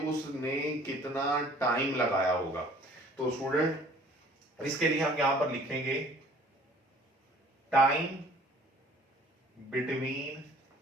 उसने कितना टाइम लगाया होगा। तो स्टूडेंट इसके लिए हम यहां पर लिखेंगे टाइम बिटवीन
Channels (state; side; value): normal; both; correlation 0.53